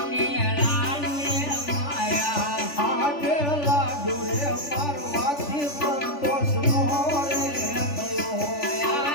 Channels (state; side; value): late; right; 3.4 ms